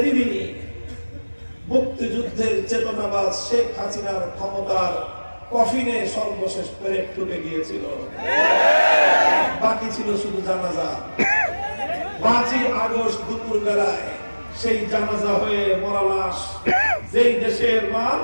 মুক্তিযুদ্ধের চেতনাবাদ শেখ হাসিনার ক্ষমতার কফিনে সর্বশেষ পেরেক ঢুকে গিয়েছিল। বাকি ছিল শুধু জানাজা। 5ই আগস্ট দুপুর বেলায় সেই জানাজা হয়ে মরা লাশ যেই দেশের মাল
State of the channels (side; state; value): both; inverted; correlation -1.00